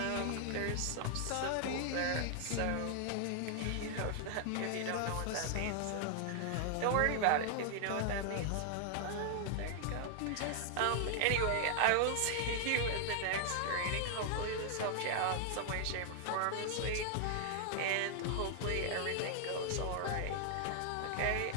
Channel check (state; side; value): different; both; correlation 0.00